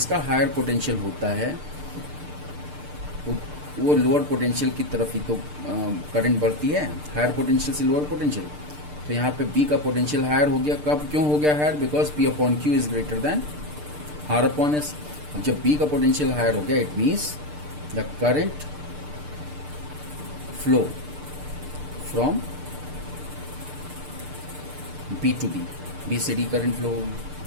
हायर पोटेंशियल होता है वो लोअर पोटेंशियल की तरफ ही तो करंट बढ़ती है, हायर पोटेंशियल से लोअर पोटेंशियल. तो यहाँ पे B का पोटेंशियल हायर हो गया. कब क्यों हो गया higher? Because P upon Q is greater than R upon S. अब जब B का पोटेंशियल हायर हो गया, it means the current flow from B to D, B से D करंट फ्लो होगी.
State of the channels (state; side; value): late; left; 6.7 ms